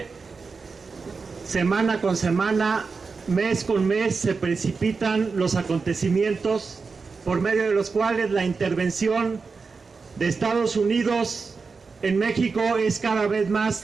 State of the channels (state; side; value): quieter; left; 4.7 dB